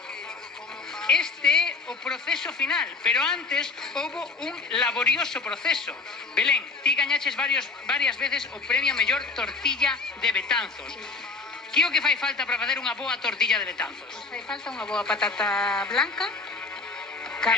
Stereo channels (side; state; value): right; quieter; 4.1 dB